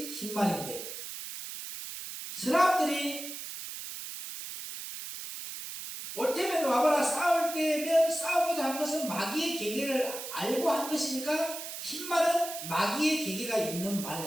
흰말인데, 사람들이 올 테면 와봐라 싸울 때면 싸우고자 한 것은 마귀의 계계를 알고 한 것이니까 흰말은 마귀의 계계가 있는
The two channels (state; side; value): noise; right; hiss, 8 dB below the sound